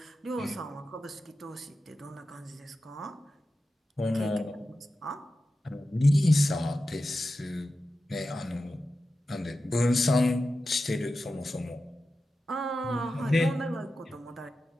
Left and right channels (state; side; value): normal; both; correlation 0.92